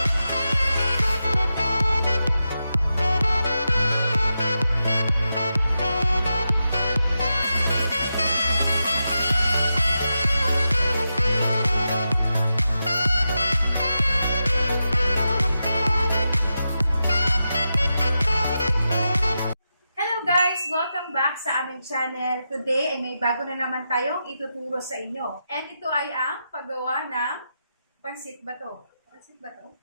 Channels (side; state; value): both; inverted; correlation -0.88